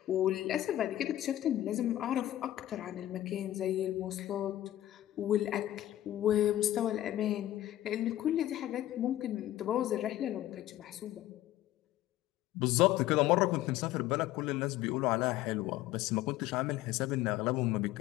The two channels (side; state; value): right; quieter; 13.9 dB